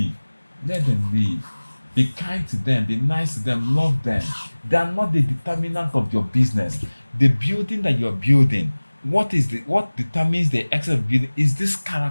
let them leave. Be kind to them. Be nice to them. Love them. They are not the determinant of your business. The building that you're building, what determines the excellence of building is this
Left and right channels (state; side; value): inverted; both; correlation -1.00